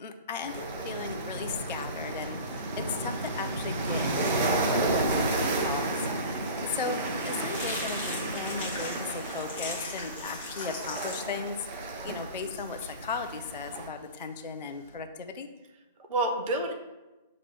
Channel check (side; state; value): both; inverted; correlation -0.33